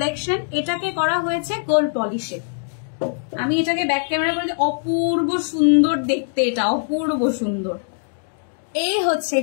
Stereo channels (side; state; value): right; silent; 63 dB below the other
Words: এটাকে করা হয়েছে গোল্ড পলিশে। আমি এটাকে ব্যাক ক্যামেরা করে, অপূর্ব সুন্দর দেখতে, এটা অপূর্ব সুন্দর। এই হচ্ছে